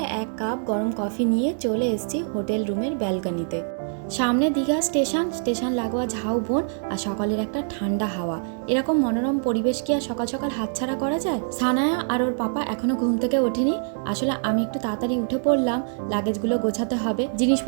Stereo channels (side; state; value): left; silent; digital silence